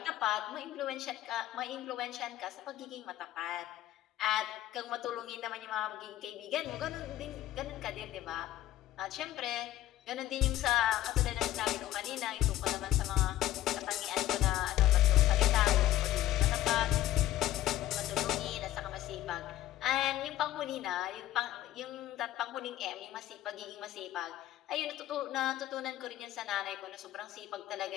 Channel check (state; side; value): quieter; right; 14.1 dB